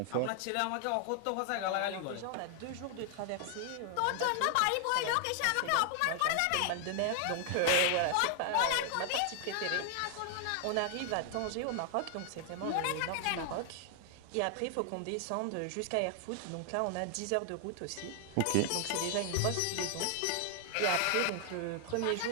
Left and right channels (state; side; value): different; both; correlation 0.00